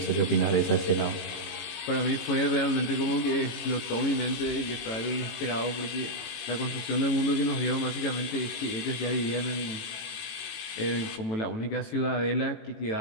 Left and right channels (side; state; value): right; late; 18 ms